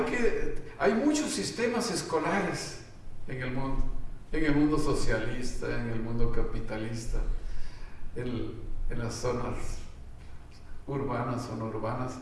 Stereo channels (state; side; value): identical; both; correlation 1.00